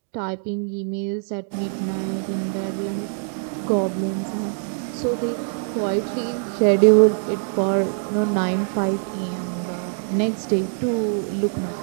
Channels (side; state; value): left; silent; digital silence